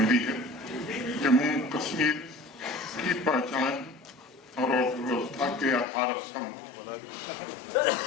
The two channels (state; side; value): drops out; right; at 5.9 s